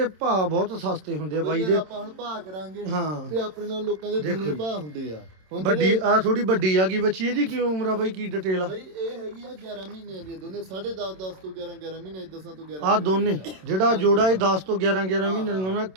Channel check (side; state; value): left; late; 27 ms